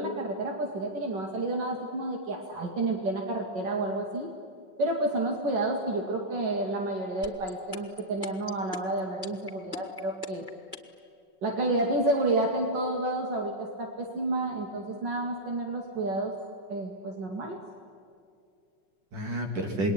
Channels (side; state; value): left; late; 5.4 ms